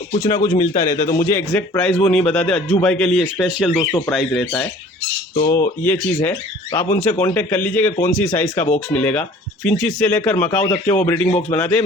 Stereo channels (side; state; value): both; normal; correlation 0.49